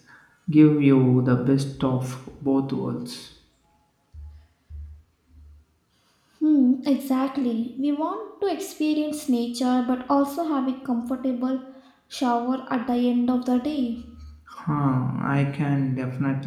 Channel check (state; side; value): identical; both; correlation 1.00